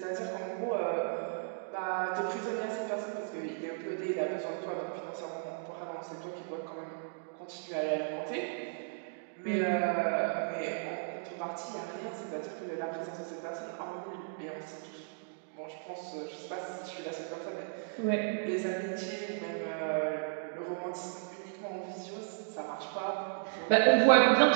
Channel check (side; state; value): left; silent; digital silence